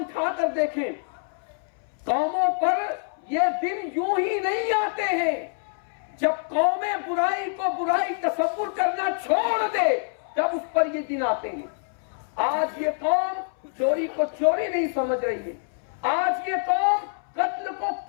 اٹھا کر دیکھیں، قوموں پر یہ دن یوں ہی نہیں آتے ہیں، جب قومیں برائی کو برائی تصور کرنا چھوڑ دے تب اس پر یہ دن آتے ہیں۔ آج یہ قوم چوری کو چوری نہیں سمجھ رہی ہے، آج یہ قوم قتل کو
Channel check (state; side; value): silent; right; 61 dB below the other